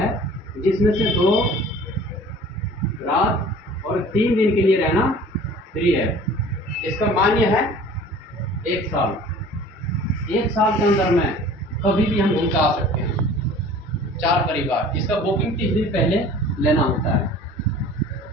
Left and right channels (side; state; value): both; normal; correlation 0.46